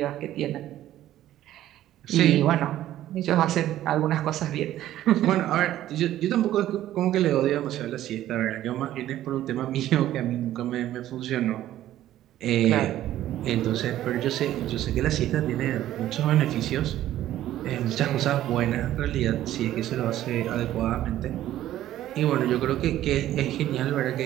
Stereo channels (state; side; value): quieter; left; 13.2 dB